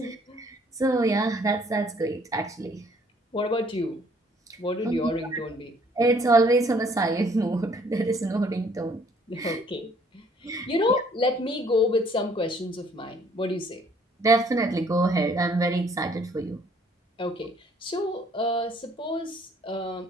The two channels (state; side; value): normal; both; correlation 0.61